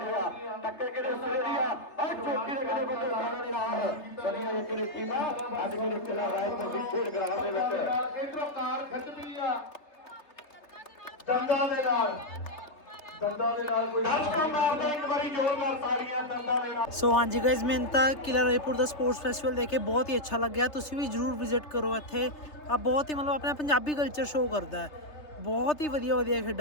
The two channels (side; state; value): right; late; 3.3 ms